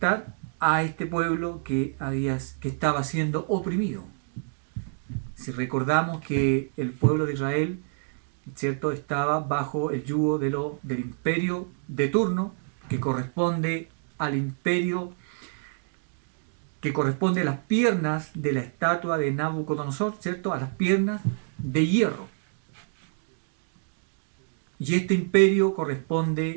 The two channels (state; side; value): silent; left; digital silence